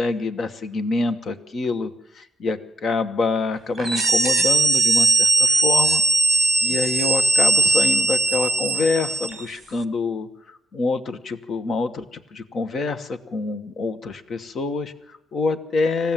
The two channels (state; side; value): normal; both; correlation 0.77